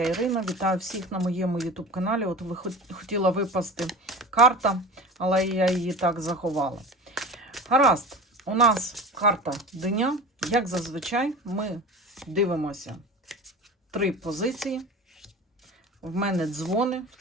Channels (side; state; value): both; normal; correlation 0.34